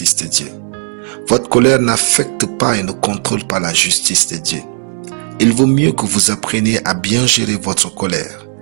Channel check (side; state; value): left; silent; 58 dB below the other